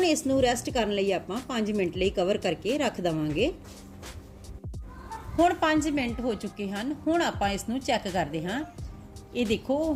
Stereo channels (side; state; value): both; identical; correlation 1.00